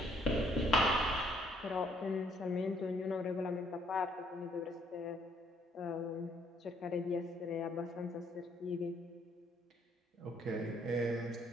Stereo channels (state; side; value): normal; both; correlation 0.67